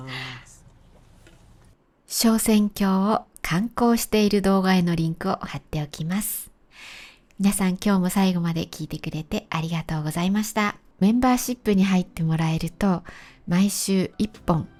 す。昇仙峡を観光している動画へのリンクを貼っておきます。皆さん今日も最後まで聞いてくれてありがとうございました。メンバーシップに入ってもらえると毎週1本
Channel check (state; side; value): identical; both; correlation 1.00